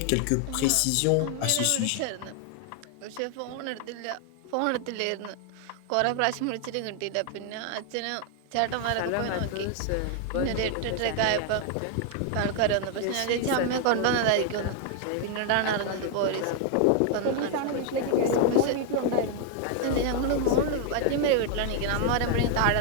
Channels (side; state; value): both; different; correlation 0.00